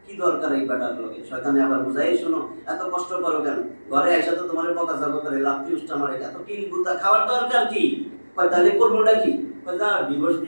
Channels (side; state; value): both; inverted; correlation -1.00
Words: কি দরকার এই ব্যাটার লোকে? শয়তানে আবার বুঝাই, শোনো এত কষ্ট করো কেন? ঘরে এসে তো তোমার বকা চাপা করে, লাফতি উষ্টা মারে, এত কিল গুতা খাওয়ার দরকার কি? কয় তাহলে করবোটা কি? কয় যা ডিভোর্স